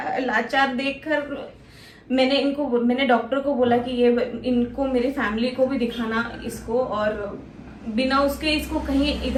लाचार देखकर मैंने डॉक्टर को बोला कि ये इनको मेरी फैमिली को भी दिखाना इसको, और बिना उसके इसको कहीं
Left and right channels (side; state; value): both; identical; correlation 1.00